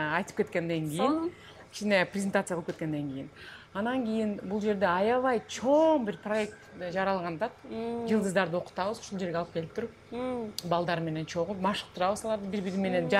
кеткенден кийин, кичине презентация кылып кеткенден кийин. Анан кийин бул жерде аябай чоң бир проект жаралганда, жылдыздарды окутабыз, ушул жерге алып келип туруп, балдар менен чогуу машыктырабыз, аларды бири-бири менен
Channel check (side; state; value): both; identical; correlation 1.00